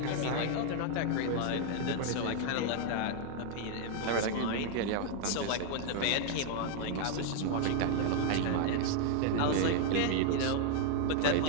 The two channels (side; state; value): both; different; correlation 0.00